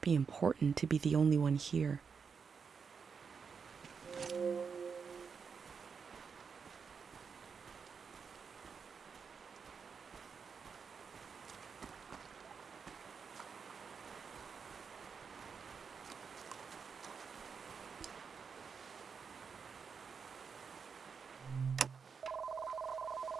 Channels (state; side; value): quieter; left; 5.9 dB